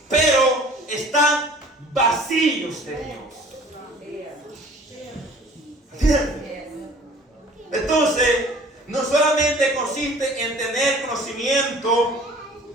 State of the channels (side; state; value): both; normal; correlation 0.49